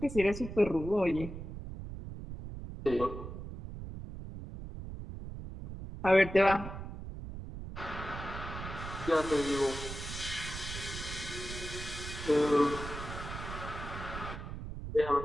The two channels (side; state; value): right; noise; rumble, 9 dB below the sound